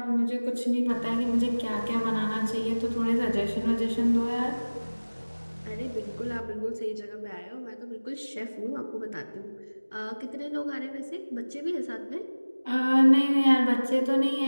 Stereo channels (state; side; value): inverted; both; correlation -1.00